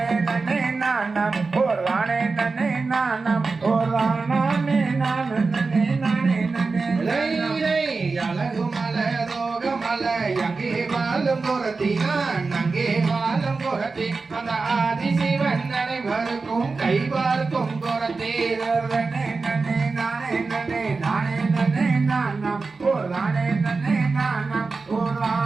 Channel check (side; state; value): left; quieter; 4.1 dB